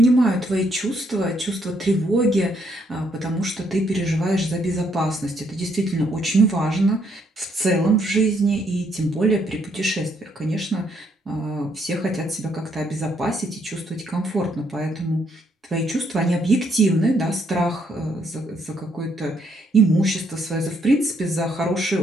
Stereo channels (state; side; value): normal; both; correlation 0.72